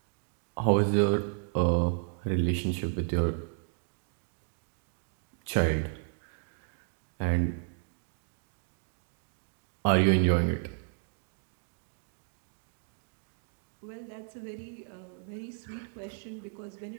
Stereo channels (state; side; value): silent; left; 56 dB below the other